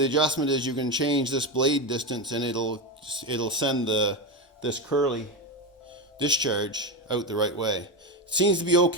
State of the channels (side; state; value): both; normal; correlation 0.15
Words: adjustment is you can change this blade distance and it'll send this curly discharge out the right way. It seems to be